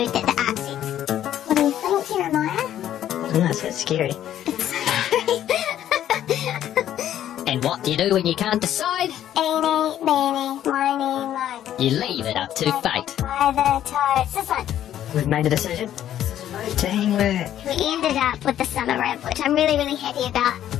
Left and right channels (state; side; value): quieter; right; 11.4 dB